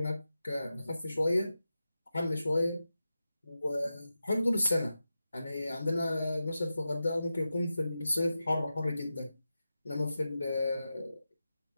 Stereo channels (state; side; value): inverted; both; correlation -0.91